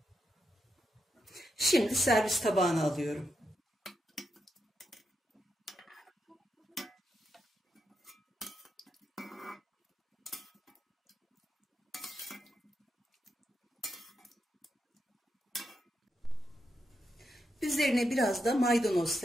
Şimdi servis tabağına alıyorum. Üzerine biraz da maydanoz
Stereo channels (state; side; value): normal; both; correlation 0.85